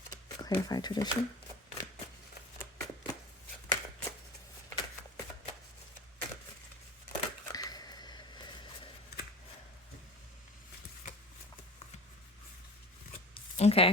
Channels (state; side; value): normal; both; correlation 0.35